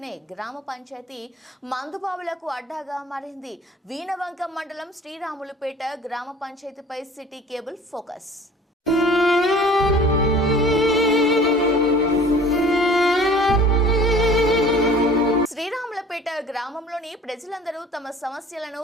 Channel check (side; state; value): both; normal; correlation 0.46